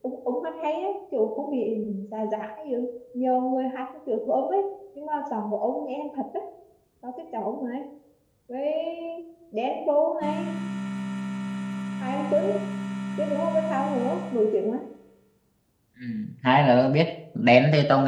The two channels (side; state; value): both; identical; correlation 1.00